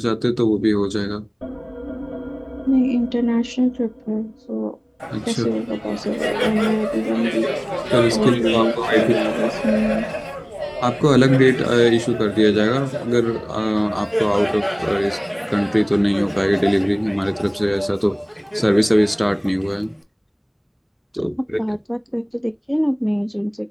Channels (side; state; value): both; identical; correlation 1.00